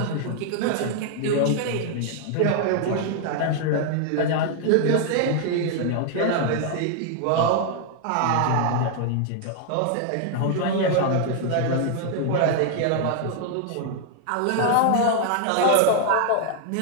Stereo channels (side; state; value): both; different; correlation 0.00